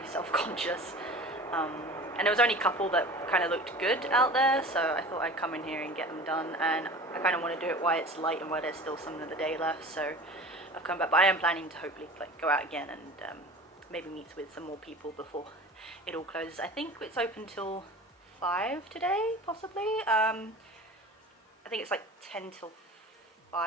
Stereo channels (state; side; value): normal; both; correlation 0.39